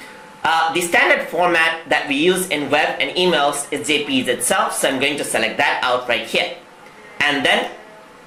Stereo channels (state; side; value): identical; both; correlation 1.00